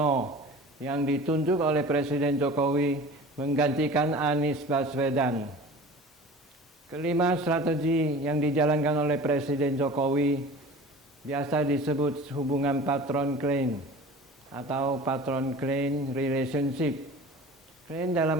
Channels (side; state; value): both; normal; correlation 0.40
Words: yang ditunjuk oleh Presiden Jokowi menggantikan Anies Baswedan. Kelima, strategi yang dijalankan oleh Presiden Jokowi biasa disebut hubungan patron-klien atau patron-klien relationship. Klien dalam